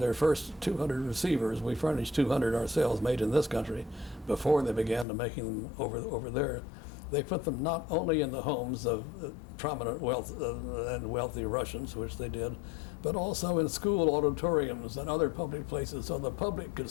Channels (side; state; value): right; drops out; at 5.1 s